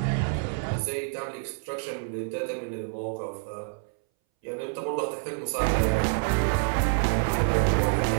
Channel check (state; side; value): silent; left; 60 dB below the other